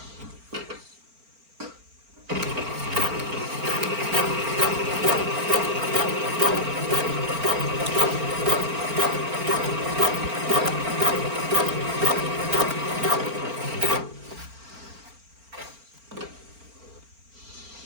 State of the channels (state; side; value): late; left; 4.4 ms